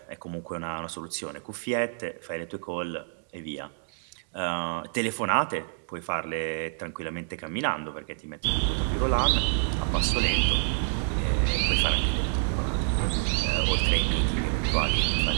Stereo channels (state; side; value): silent; left; digital silence